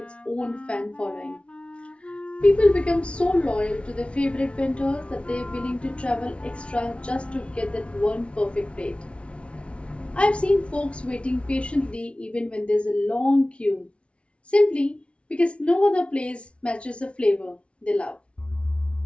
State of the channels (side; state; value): right; late; 0.060 ms